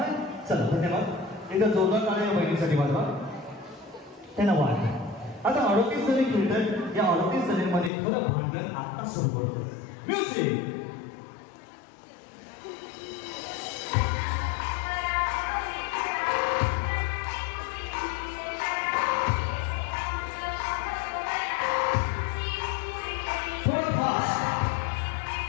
चला धन्यवाद. एकदा जोरदार टाळ्या बहिणीसाठी वाजवा. त्यांना वाढ. आता 38 जणी खेळतात. या 38 जणींमध्ये खरं भांडण आता सुरू करतो. म्युझिक.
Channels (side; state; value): right; drops out; at 7.9 s